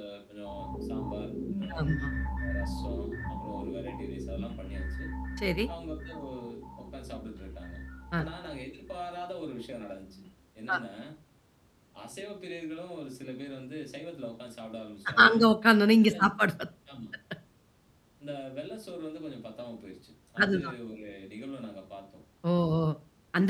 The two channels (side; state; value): both; identical; correlation 1.00